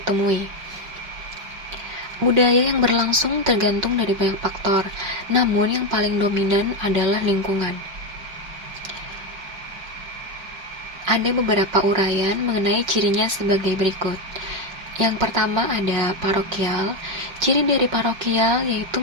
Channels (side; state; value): left; late; 5.4 ms